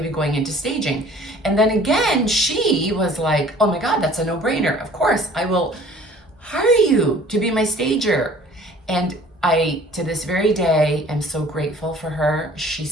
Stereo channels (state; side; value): normal; both; correlation 0.51